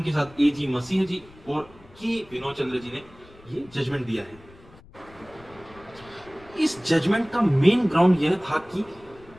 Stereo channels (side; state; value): left; noise; rumble, 24 dB below the sound